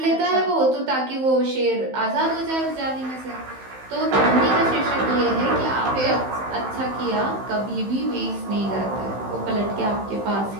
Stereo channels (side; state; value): left; late; 15 ms